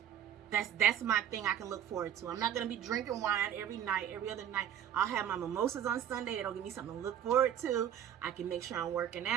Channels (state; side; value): quieter; left; 9.9 dB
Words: That's my thing I can look forward to. I'm not going to be drinking wine every night, every other night. I'll have my mimosas on Sunday. It'll give me something to look forward to. I can make sure I'm working